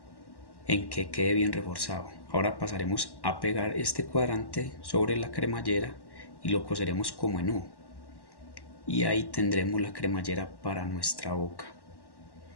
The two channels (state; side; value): late; right; 1.1 ms